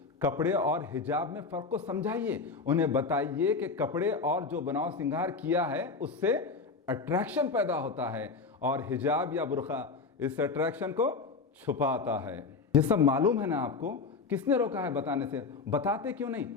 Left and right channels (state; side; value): quieter; right; 4.5 dB